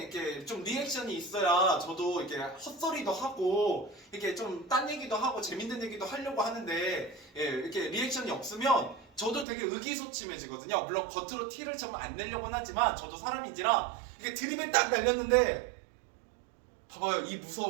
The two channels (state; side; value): drops out; left; at 9.5 s